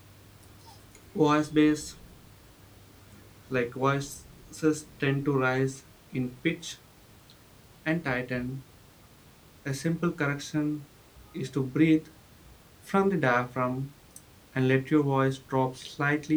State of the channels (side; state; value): both; identical; correlation 1.00